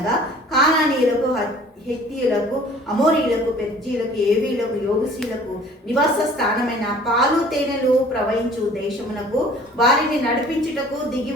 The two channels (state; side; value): normal; both; correlation 0.50